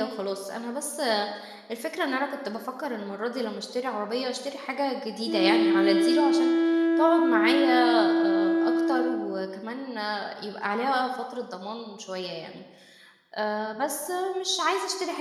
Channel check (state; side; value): identical; both; correlation 1.00